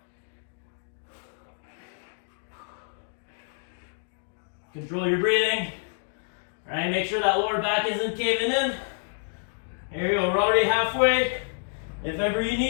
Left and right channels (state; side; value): silent; right; digital silence